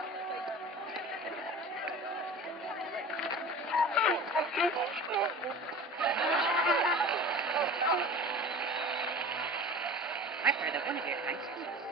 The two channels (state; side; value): normal; both; correlation 0.37